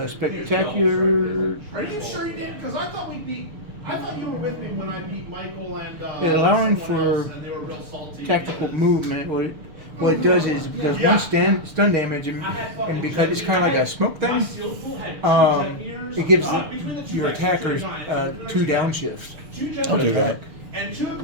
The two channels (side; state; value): left; late; 6.7 ms